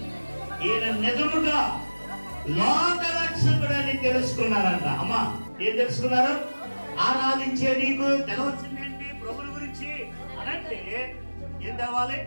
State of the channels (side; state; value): both; inverted; correlation -1.00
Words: ఈయన నిజముగా లోకరక్షకుడని తెలుసుకున్నారంట. అమ్మా, ఏం తెలుసుకున్నారు? ఆరాధించే నీకు తెలవచ్చిందేంటి ప్రభుని గురించి అనంటే ఏం తెలవాలి?